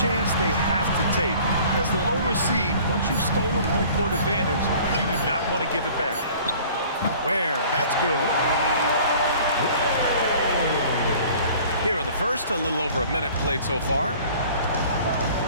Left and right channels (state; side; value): inverted; both; correlation -0.49